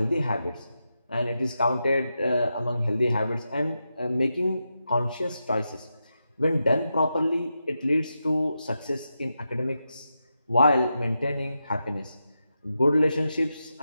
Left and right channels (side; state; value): both; inverted; correlation -0.88